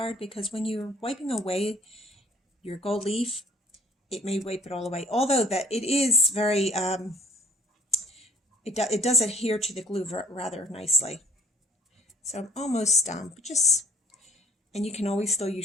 because when you're wiping away your gold leaf, it may wipe it all away. Although that it is very, it does adhere to the glue rather nicely. So I'm almost done, but and you can always still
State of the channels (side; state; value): both; normal; correlation 0.56